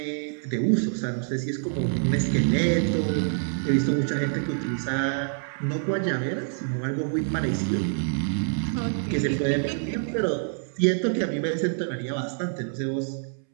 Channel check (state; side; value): silent; left; 61 dB below the other